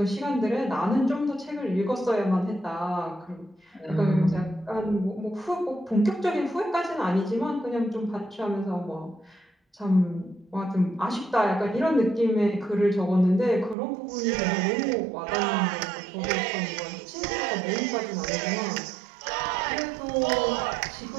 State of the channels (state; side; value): drops out; left; at 13.8 s